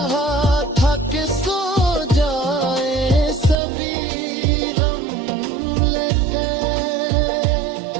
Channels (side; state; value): left; drops out; at 3.6 s